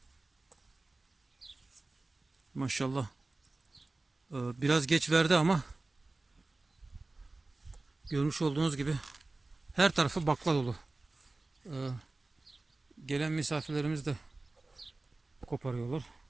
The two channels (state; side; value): quieter; left; 3.2 dB